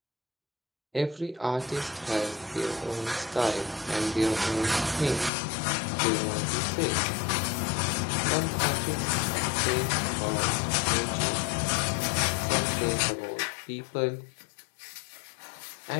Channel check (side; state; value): right; drops out; at 5.3 s